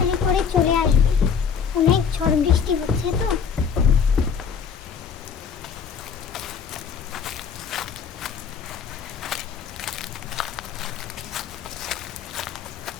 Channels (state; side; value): quieter; right; 6.8 dB